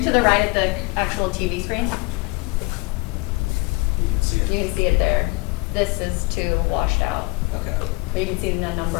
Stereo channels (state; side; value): quieter; right; 25.5 dB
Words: to the right at the actual TV screen. You can see it there. This is too washed out. Okay. But you can see the